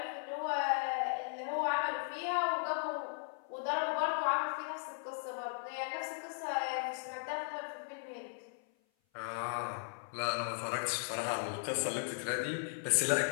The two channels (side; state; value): right; silent; 53 dB below the other